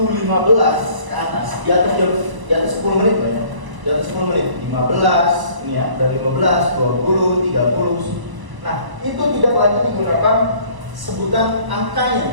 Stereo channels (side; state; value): left; late; 1.0 ms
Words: 15 ke atas, di atas 10 menit ya. Di atas 10 menit, 15, ini ya, dari 15, 20, 30. Nah, itu tidak lagi digunakan sebutan